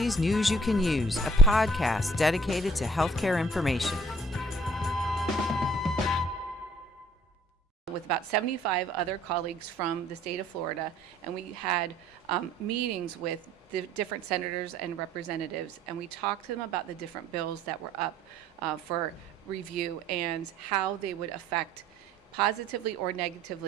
News You Can Use, a podcast dedicated to healthcare information. With about 75 other colleagues from the state of Florida, and we had meetings with the different senators and representatives, and we talked to them about the different bills that were up for review and how they would affect positively or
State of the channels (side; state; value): both; normal; correlation 0.57